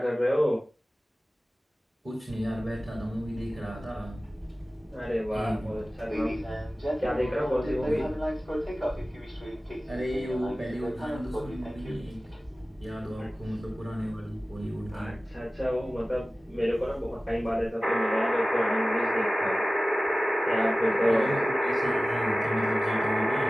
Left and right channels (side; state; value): both; normal; correlation 0.96